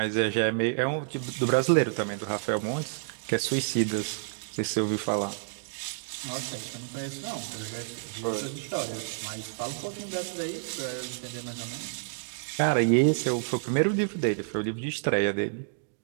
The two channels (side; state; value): left; silent; digital silence